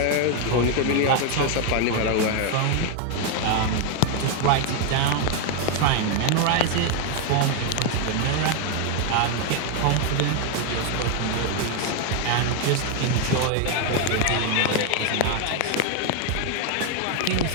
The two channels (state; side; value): different; both; correlation 0.00